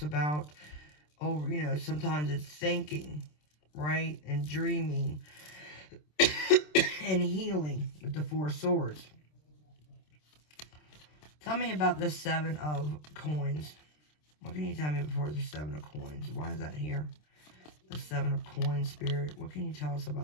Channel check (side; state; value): right; late; 27 ms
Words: about, sometimes it's thinking. Right? And dreaming. And healing with the Four of Swords. Tell me about the Seven of Coins. What can you tell me before the Seven of Coins? Why is that here? The Seven of Coins, Spirit. What can you tell us